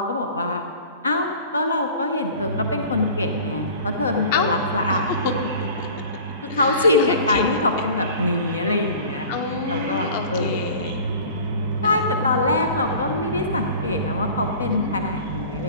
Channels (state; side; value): inverted; both; correlation -0.42